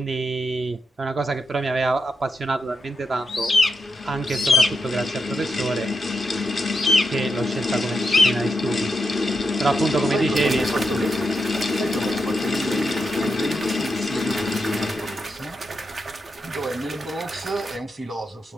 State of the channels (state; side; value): normal; both; correlation 0.85